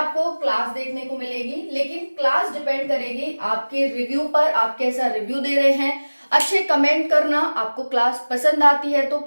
क्लास देखने को मिलेगी, लेकिन क्लास डिपेंड करेगी आपके रिव्यू पर, आप कैसा रिव्यू दे रहे हैं। अच्छे कमेंट करना, आपको क्लास पसंद आती है तो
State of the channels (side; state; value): both; inverted; correlation -1.00